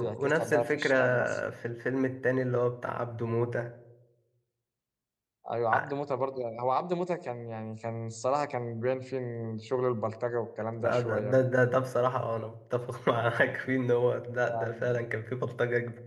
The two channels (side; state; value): both; identical; correlation 1.00